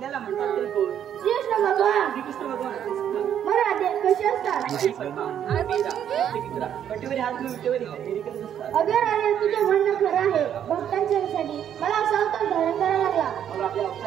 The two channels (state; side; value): quieter; left; 9.6 dB